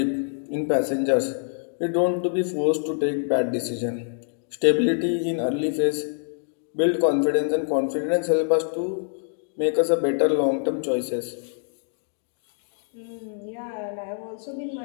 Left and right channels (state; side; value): silent; right; digital silence